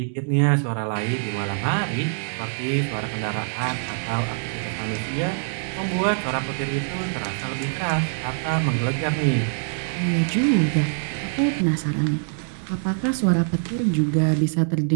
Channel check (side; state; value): left; silent; digital silence